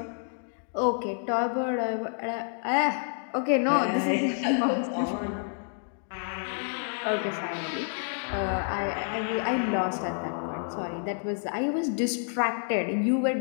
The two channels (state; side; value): silent; right; 59 dB below the other